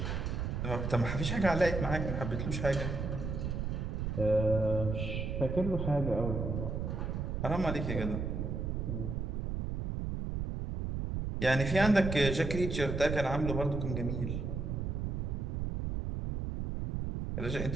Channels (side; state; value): right; noise; rumble, 2 dB below the sound